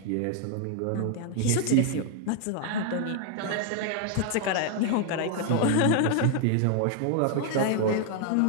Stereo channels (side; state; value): both; different; correlation 0.00